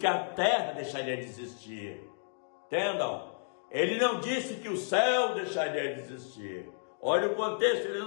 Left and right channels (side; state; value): right; silent; digital silence